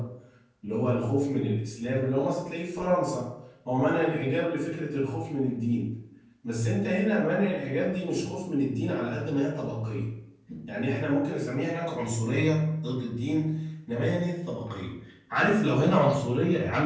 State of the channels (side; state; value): both; identical; correlation 1.00